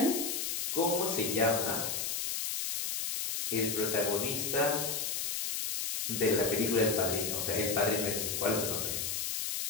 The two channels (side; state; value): left; noise; hiss, 1 dB below the sound